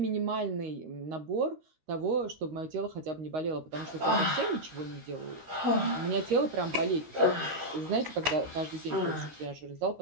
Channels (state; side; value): late; left; 13 ms